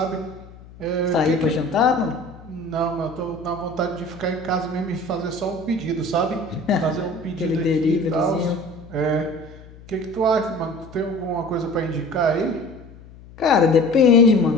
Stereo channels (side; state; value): left; noise; hum, 20 dB below the sound